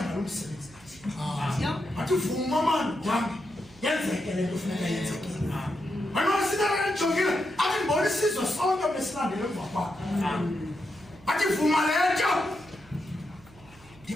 ngalo msebenzi athi vuma mani wami yenzeke le nto funeka yenzekile anosinakajongile athi ndibona isizwe sonke besilandele emva kwakho athi vuma le nto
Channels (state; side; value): noise; right; hum, 25 dB below the sound